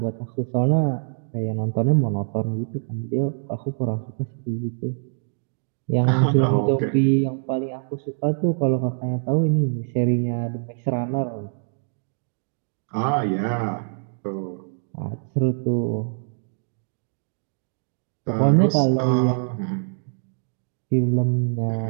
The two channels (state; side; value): silent; left; 62 dB below the other